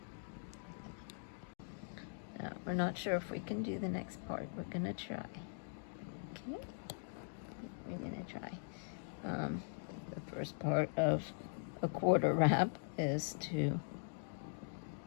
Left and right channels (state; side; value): silent; right; digital silence